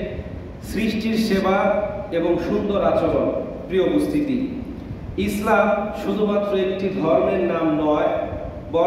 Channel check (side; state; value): both; identical; correlation 1.00